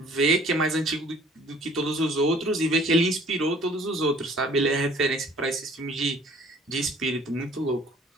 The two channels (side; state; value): both; normal; correlation 0.54